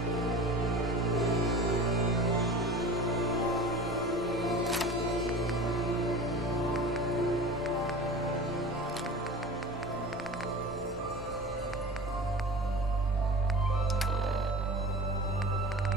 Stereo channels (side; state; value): both; normal; correlation 0.36